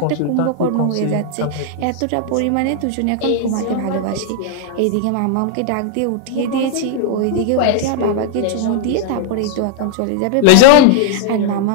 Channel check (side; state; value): both; different; correlation 0.00